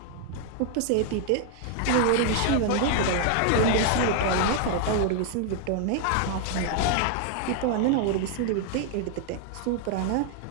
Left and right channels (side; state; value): both; different; correlation 0.00